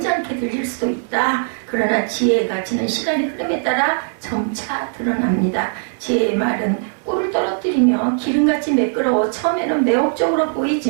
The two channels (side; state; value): left; silent; 65 dB below the other